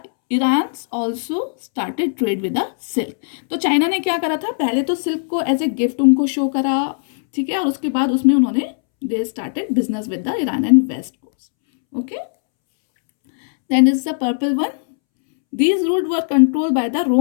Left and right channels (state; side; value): silent; right; 67 dB below the other